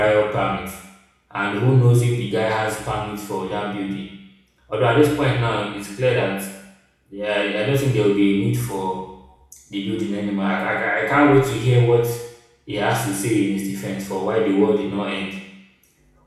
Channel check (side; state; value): both; identical; correlation 1.00